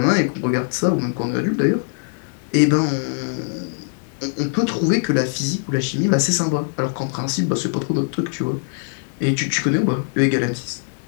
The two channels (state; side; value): silent; right; digital silence